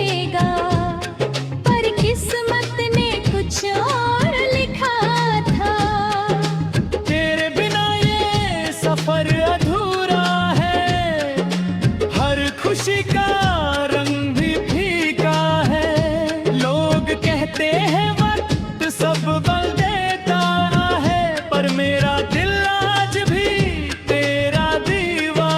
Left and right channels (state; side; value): identical; both; correlation 1.00